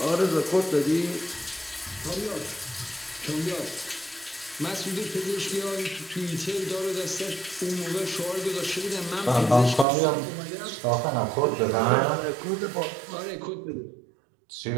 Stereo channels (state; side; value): drops out; left; at 9.9 s